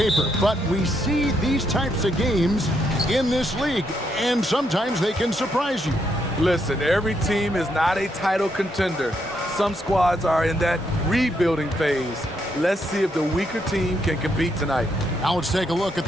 but we see these types of games in this league, and sometimes they can surprise you. Listen, every team is not a title contender. Some squads are in that rebuilding phase. Let's see if the weaker team can compete tonight. Now let's take a look at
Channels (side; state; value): both; normal; correlation 0.77